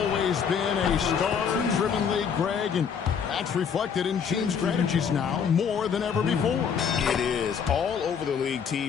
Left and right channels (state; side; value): quieter; right; 7.0 dB